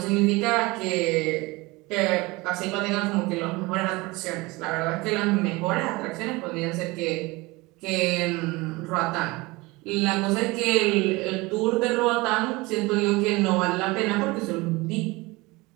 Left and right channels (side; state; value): left; quieter; 23.0 dB